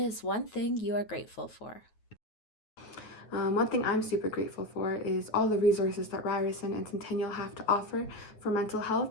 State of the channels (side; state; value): right; late; 9.3 ms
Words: one thing you are grateful for? One thing I'm super grateful for is all the resources that Ryerson and Centennial have to offer for mental